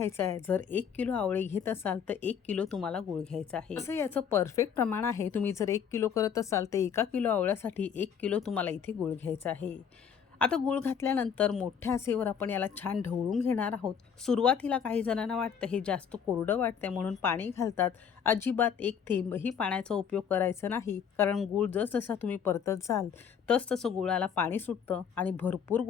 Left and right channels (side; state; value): right; quieter; 7.5 dB